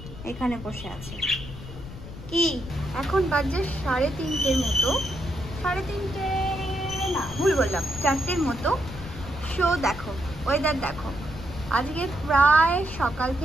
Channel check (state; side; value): noise; left; rumble, 12 dB below the sound